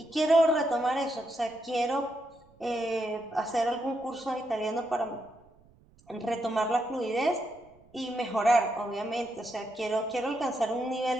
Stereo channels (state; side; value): noise; right; rumble, 29 dB below the sound